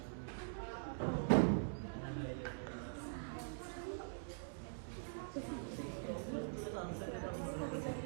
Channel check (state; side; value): silent; left; digital silence